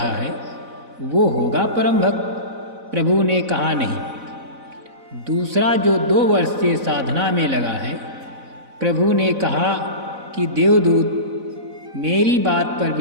है वो होगा परम भक्त। प्रभु ने कहा, नहीं। दूसरा जो 2 वर्ष से साधना में लगा है। प्रभु ने कहा कि देवदूत, मेरी बात पर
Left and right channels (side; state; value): left; late; 4.0 ms